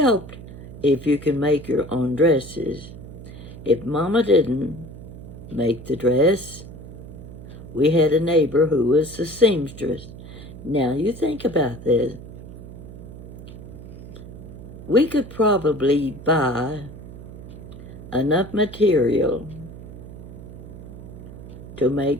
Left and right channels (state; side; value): noise; right; hum, 14 dB below the sound